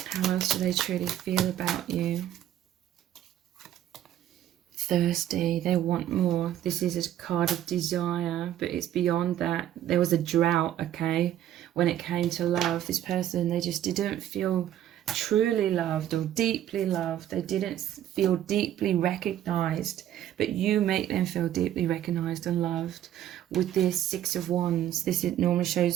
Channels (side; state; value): left; quieter; 11.7 dB